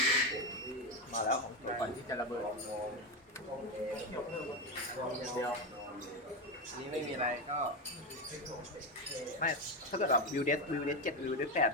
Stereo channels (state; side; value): normal; both; correlation 0.12